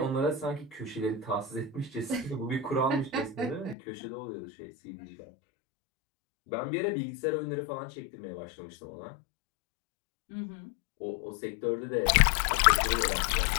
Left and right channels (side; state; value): right; drops out; at 3.8 s